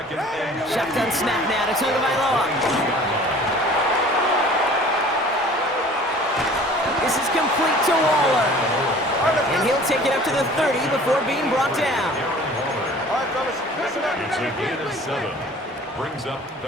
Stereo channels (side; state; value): both; normal; correlation 0.47